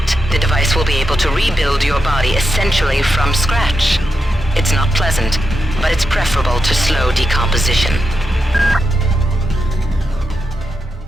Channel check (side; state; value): both; normal; correlation 0.87